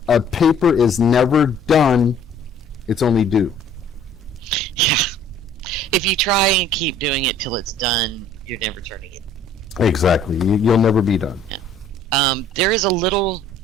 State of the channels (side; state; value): both; normal; correlation 0.55